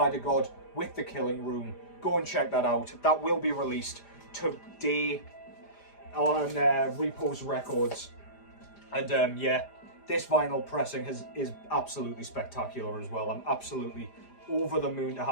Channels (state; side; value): late; right; 5.0 ms